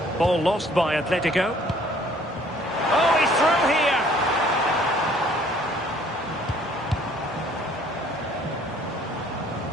Ball lost by Atletico. Oh, he's through here.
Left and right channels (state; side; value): normal; both; correlation 0.58